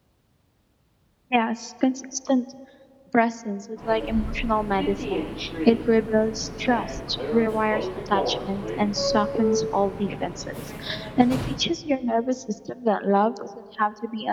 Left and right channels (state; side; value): identical; both; correlation 1.00